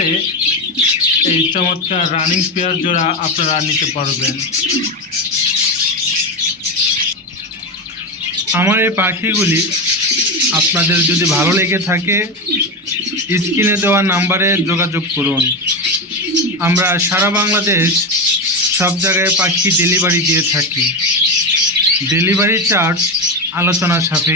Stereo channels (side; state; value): both; normal; correlation 0.15